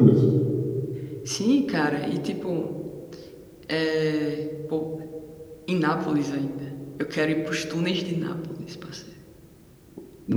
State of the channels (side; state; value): both; identical; correlation 1.00